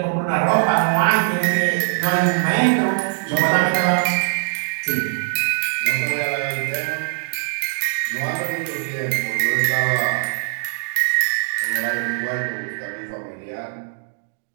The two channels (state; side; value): silent; left; digital silence